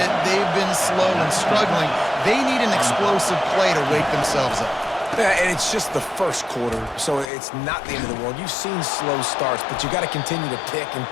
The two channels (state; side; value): drops out; right; at 7.3 s